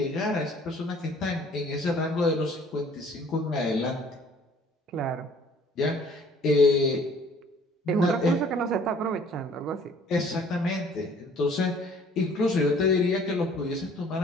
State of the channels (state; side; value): normal; both; correlation 0.55